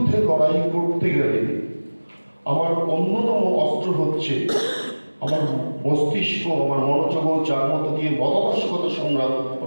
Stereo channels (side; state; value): both; inverted; correlation -1.00